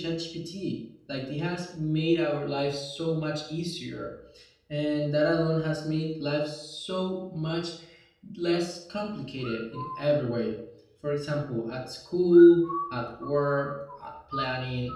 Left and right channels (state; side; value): identical; both; correlation 1.00